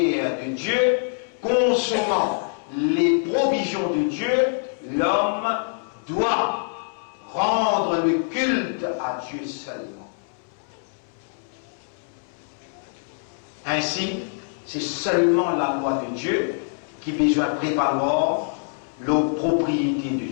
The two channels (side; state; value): right; silent; 62 dB below the other